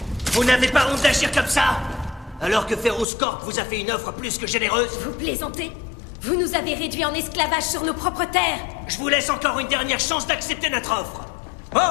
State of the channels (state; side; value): drops out; right; at 3.1 s